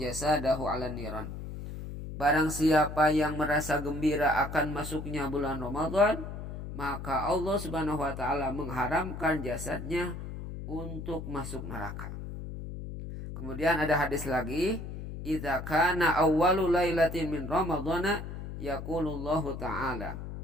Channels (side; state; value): left; noise; hum, 8 dB below the sound